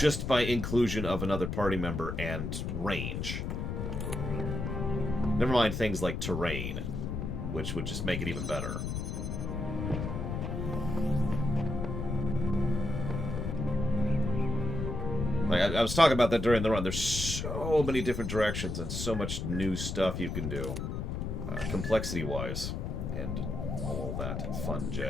by inclusion of another party member and range. Never mind things like terrain, which would just make it even better. Like, I was talking about that during the run. There's so many different directions and so much new stuff you can do, complexity-wise, and all that fun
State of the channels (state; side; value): noise; left; rumble, 3 dB below the sound